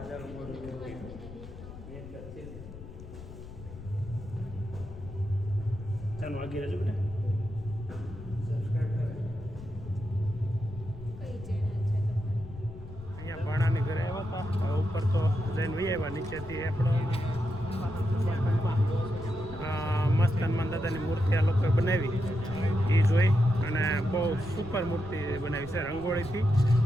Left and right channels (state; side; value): noise; left; rumble, 14 dB below the sound